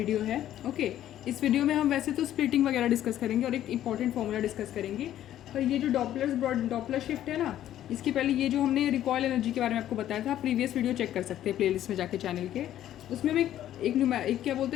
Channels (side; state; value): right; quieter; 12.1 dB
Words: है। ओके, इस वीडियो में हम वैसे तो स्प्लिटिंग वगैरह डिस्कस करेंगे और एक इंपॉर्टेंट फॉर्मूला डिस्कस करेंगे। पर ये जो डॉपलर शिफ्ट है ना, इसके पहले ये जो हमने रिकॉयल एनर्जी के बारे में आपको बताया था, प्रीवियस वीडियो चेक कर सकते हैं प्लेलिस्ट में जाके चैनल के। उसमें हम एक क्या